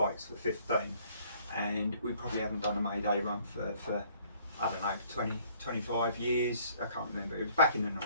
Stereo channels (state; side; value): inverted; both; correlation -0.60